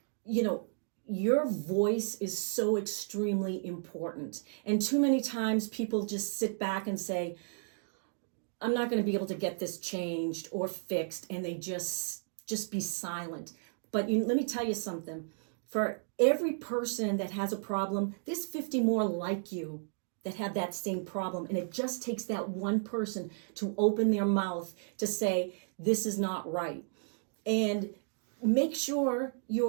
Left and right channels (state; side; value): silent; left; digital silence